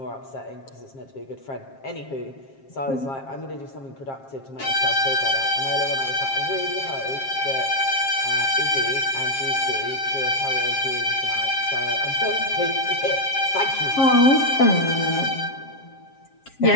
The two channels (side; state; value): right; late; 7.4 ms